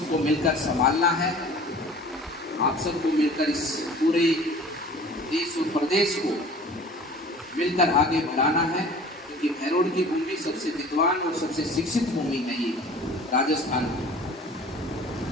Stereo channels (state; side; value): normal; both; correlation 0.45